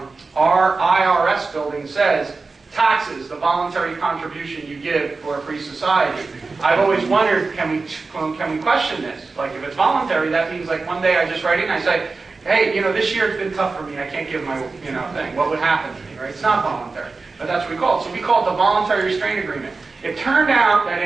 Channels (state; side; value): quieter; left; 4.0 dB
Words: IRS building says, taxes, the voluntary contribution you give for a free society. I've always wondered, can we question this? Like if it's voluntary, that means like one day I just write in and I say, hey, this year it's been tough for me. I can't give my, thing. What would happen to me, right? It's not voluntary. But that's what we call it. So we call it the Voluntary Restraint Agreement. It turned out that